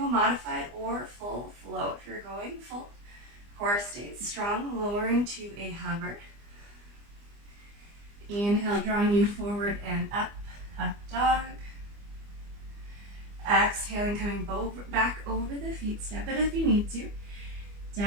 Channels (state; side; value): late; left; 25 ms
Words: modified or full flow. If you're going full, core stays strong, lowering to a hover. Inhale, drawing you forward and up, up dog. Exhaling, coming back over the feet, step it if you need to.